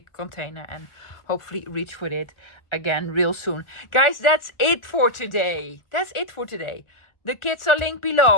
container and hopefully reach for it again real soon. Guys, that's it for today. The kits are linked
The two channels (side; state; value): right; late; 1.4 ms